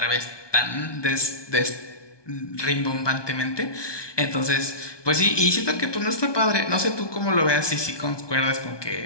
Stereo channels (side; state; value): right; late; 1.2 ms